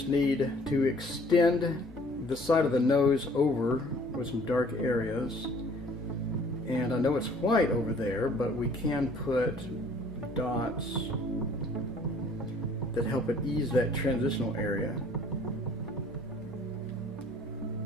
need to extend the side of the nose over with some dark areas. And I know it's white over there, but we can put dots that help it ease that transitional area.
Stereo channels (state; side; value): normal; both; correlation 0.55